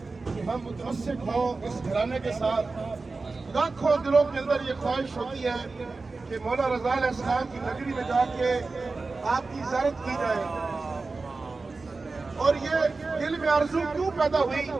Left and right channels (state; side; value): quieter; left; 3.8 dB